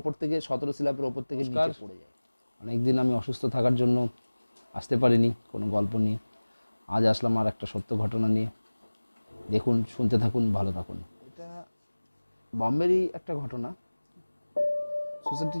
থেকে 17 স্ল্যাবের ওপর থেকে নিচে পড়ে যায়। অনেকদিন আমি অসুস্থ থাকার জন্য আসতে পারিনি কোনো গল্প নিয়ে। আজ আসলাম আর একটা সত্য ঘটনা নিয়ে। দেখুন, শুনতে থাকুন, ভালো থাকুন। এটা বম্বেরই একটা ঘটনা।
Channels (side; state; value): both; inverted; correlation -1.00